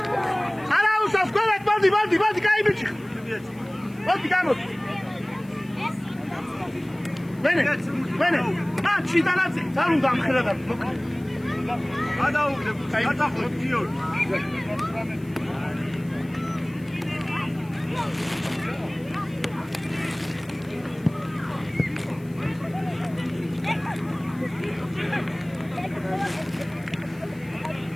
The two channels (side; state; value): left; noise; hiss, 27 dB below the sound